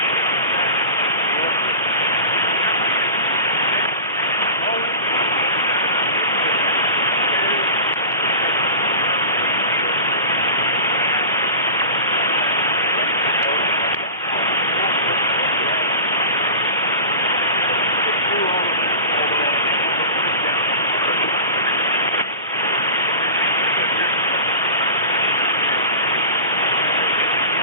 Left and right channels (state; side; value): inverted; both; correlation -0.34